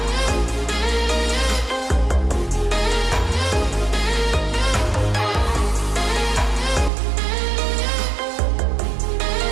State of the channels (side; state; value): left; drops out; at 6.9 s